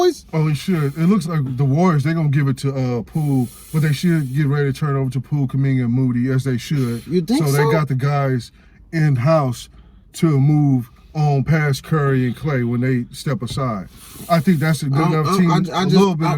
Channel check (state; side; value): identical; both; correlation 1.00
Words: Oh, he should. It looks like the Warriors, they're going to give it to Poole, but they should get ready to turn it over to Poole, Kuminga, and Moody, as they should. You think so? So they got the guys in-house to move on past Curry and Clay when they step aside. I think that's a good enough team, a little bit